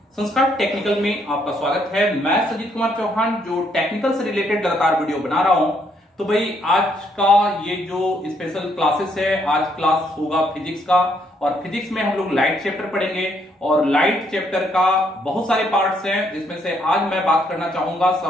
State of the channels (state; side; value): normal; both; correlation 0.72